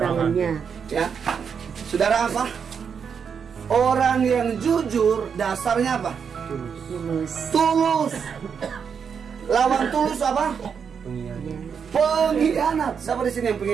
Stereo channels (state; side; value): quieter; left; 6.8 dB